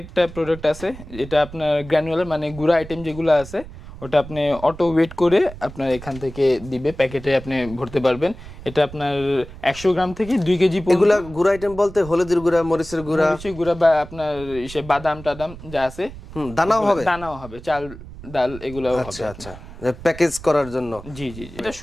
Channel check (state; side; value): noise; right; rumble, 15 dB below the sound